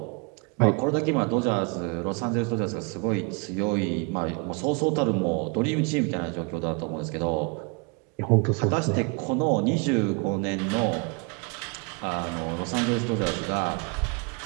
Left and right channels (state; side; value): quieter; left; 32.6 dB